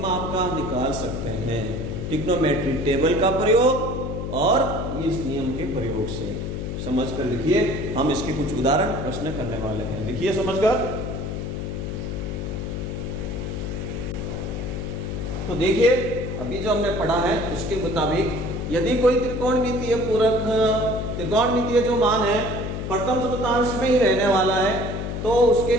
का निकाल सकते हैं, ट्रिग्नोमेट्री टेबल का प्रयोग और इस नियम के प्रयोग से। समझकर लिखिए, हम इसके कुछ उदाहरण प्रश्न करने वाले हैं, लिखिए समझकर। तो देखिए अभी जो हमने पढ़ा है उसके मुताबिक यदि कोई त्रिकोणमितीय पूरक, त्रिकोणमितीय जो मान है प्रथम चतुर्थांश में ही रहने वाला है, तो उसके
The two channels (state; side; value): noise; left; hum, 4 dB below the sound